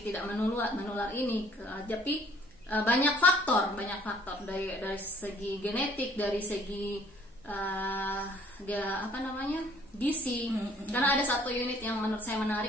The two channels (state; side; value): normal; both; correlation 0.58